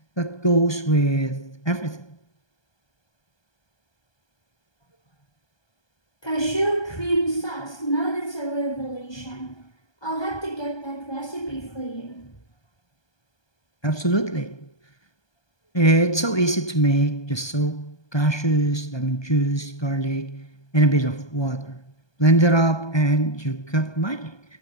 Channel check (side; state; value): right; late; 1.2 ms